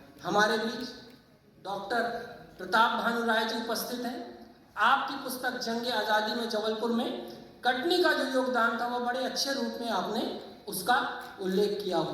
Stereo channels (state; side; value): identical; both; correlation 1.00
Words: हमारे बीच डॉक्टर प्रताप भानु राय जी उपस्थित हैं। आपकी पुस्तक जंग आज़ादी में जबलपुर में कटनी का जो योगदान था, वह बड़े अच्छे रूप में आपने उसका उल्लेख किया